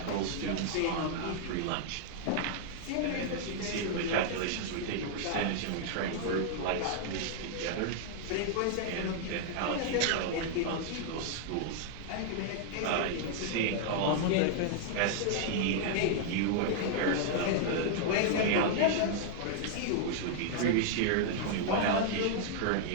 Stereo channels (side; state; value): both; different; correlation -0.01